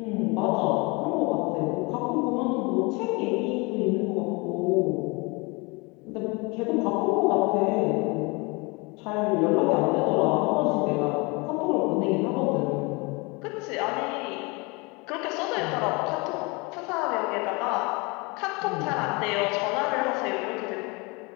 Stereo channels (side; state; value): right; quieter; 27.5 dB